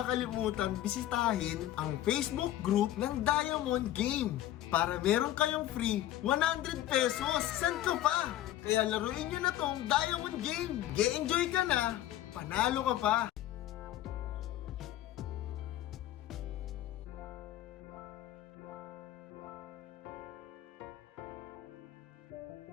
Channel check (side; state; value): right; quieter; 13.4 dB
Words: bisitahin ang Facebook group ng Diamond Game para meron kayong free 100 pesos. San ka pa? Kaya laruin nyo na tong Diamond Game. Ge-enjoy ka na, panalo ka pa.